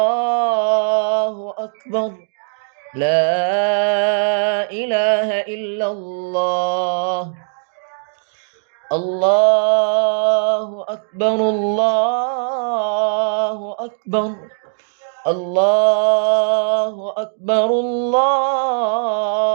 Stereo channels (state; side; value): silent; left; digital silence